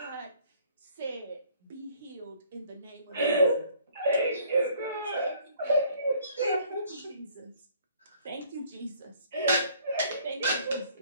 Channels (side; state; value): both; inverted; correlation -0.59